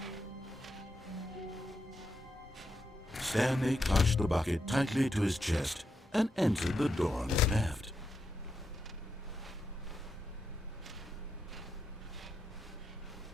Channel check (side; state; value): both; normal; correlation 0.84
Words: Stanley clutched the bucket tightly to his chest and entered the door on his left.